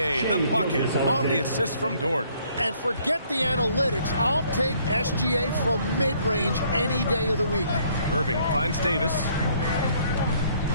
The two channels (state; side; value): inverted; both; correlation -0.64